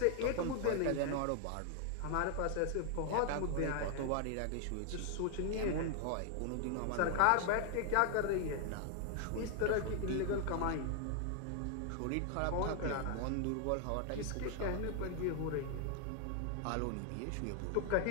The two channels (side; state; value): both; different; correlation 0.00